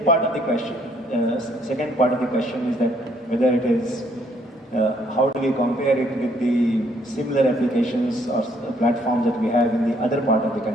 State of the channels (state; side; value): normal; both; correlation 0.67